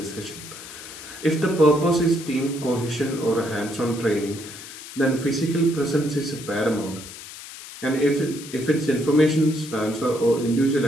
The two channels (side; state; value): left; noise; hiss, 14 dB below the sound